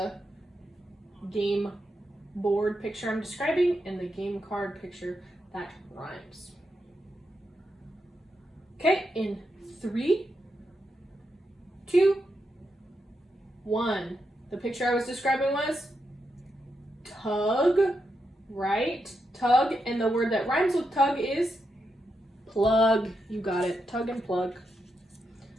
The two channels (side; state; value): both; normal; correlation 0.84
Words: game board picture I'm describing and the game card picture that rhymes. Okay, in 3, 2, 1. The picture I was describing was tug, right? Tug, and the word that rhymes with tug is plug. You got it, tug and plug.